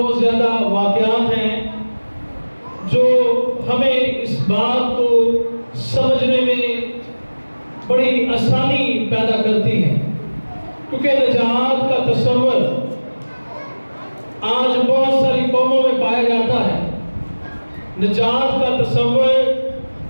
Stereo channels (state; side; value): inverted; both; correlation -1.00